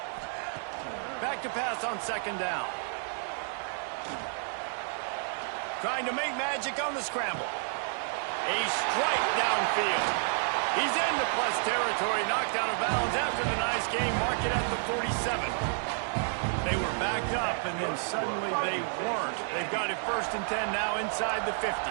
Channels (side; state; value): left; silent; 57 dB below the other